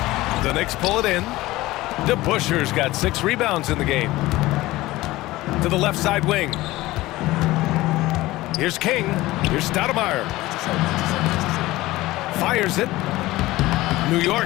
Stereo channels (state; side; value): quieter; right; 18.1 dB